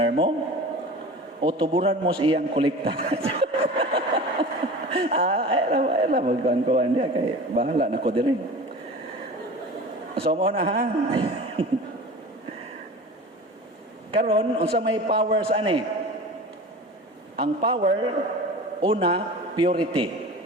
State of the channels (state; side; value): normal; both; correlation 0.36